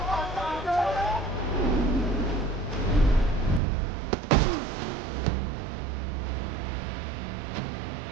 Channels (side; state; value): left; drops out; at 3.6 s